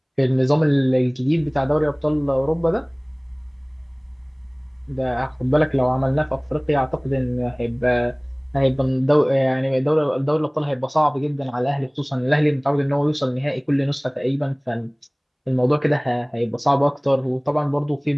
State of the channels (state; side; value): identical; both; correlation 1.00